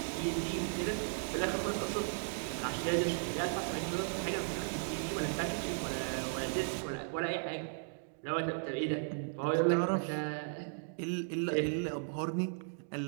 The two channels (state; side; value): silent; left; digital silence